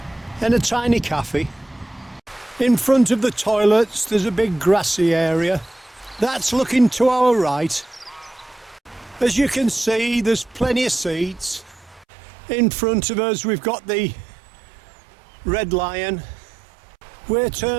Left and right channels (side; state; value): left; drops out; at 12.1 s